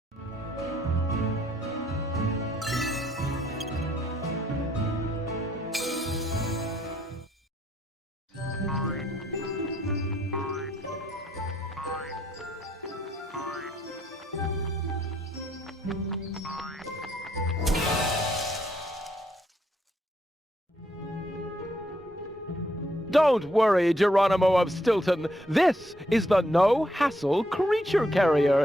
Don't worry, Geronimo of Stilton. This is the no-hassle creature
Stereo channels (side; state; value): both; normal; correlation 0.72